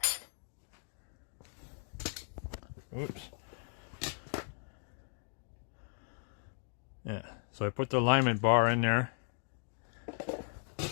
Oops. Yeah, so I put the alignment bar in there,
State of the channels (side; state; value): right; silent; 53 dB below the other